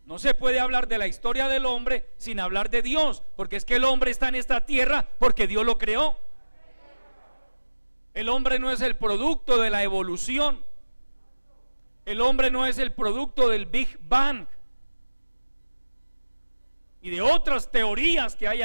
No se puede hablar de la historia del hombre sin hablar de Dios, porque es que el hombre está en esta tierra porque Dios lo creó. El hombre no es el producto de la evolución. El hombre no es el producto del Big Bang y de otras teorías que hay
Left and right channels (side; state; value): both; inverted; correlation -1.00